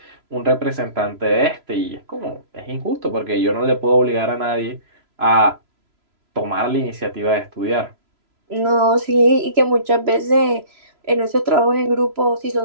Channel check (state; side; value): late; left; 3.0 ms